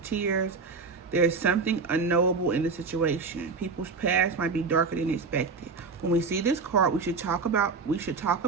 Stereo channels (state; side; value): quieter; left; 4.5 dB